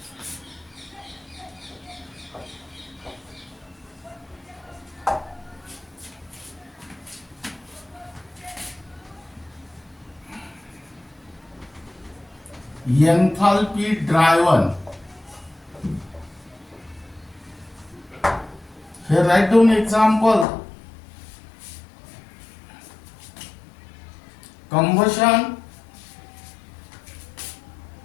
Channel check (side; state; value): right; drops out; at 20.5 s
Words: enthalpy driven. Here write down example. Combustion